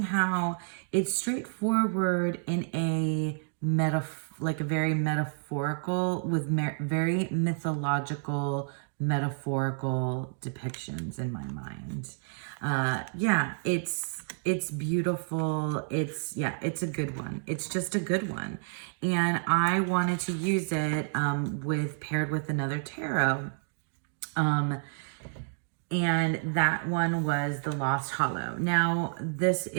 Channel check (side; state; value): left; silent; 58 dB below the other